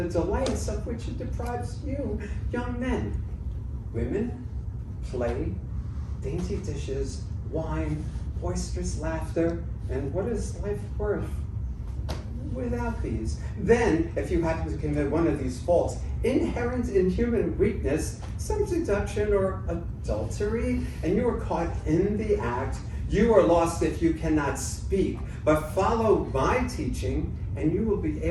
delights of which it deprives you, young men. Women, play, dainty dishes, wine, boisterous laughter, and what is life worth without these? Then, if you happen to commit one of these faults, inherent in human weakness, some seduction or adultery, and you are caught in the act, you are lost if you cannot speak. But follow my teaching, and you will be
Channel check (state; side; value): identical; both; correlation 1.00